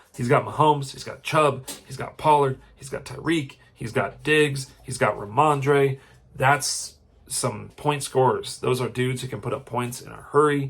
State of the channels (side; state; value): both; identical; correlation 1.00